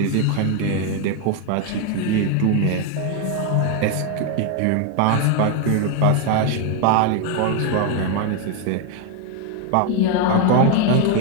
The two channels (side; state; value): both; different; correlation 0.01